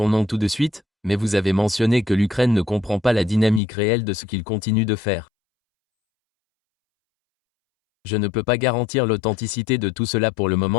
nom tout de suite, mais vous avez mentionné que l'Ukraine ne comprend pas la dynamique réelle de ce qu'il continue de faire. Je ne peux pas garantir l'authenticité de tout cela pour le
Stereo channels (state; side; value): drops out; right; at 3.6 s